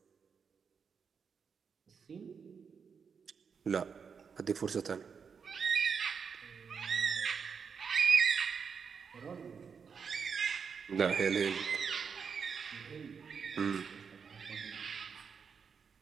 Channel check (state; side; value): quieter; left; 6.2 dB